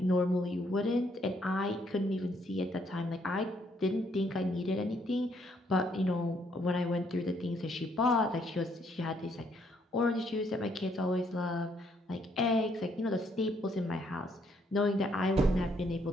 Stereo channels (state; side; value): normal; both; correlation 0.70